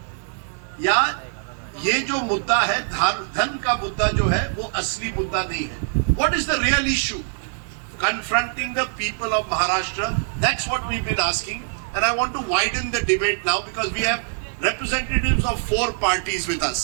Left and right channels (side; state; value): left; silent; digital silence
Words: या ये जो मुद्दा है धन का मुद्दा जो है वो असली मुद्दा नहीं है? What is the real issue confronting the people of Maharashtra? That's what we've been asking, and I want to widen the debate now because we have representatives of 4 parties with